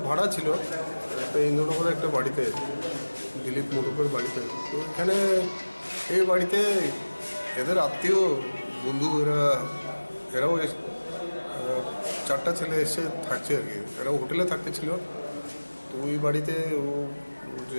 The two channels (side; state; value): both; inverted; correlation -1.00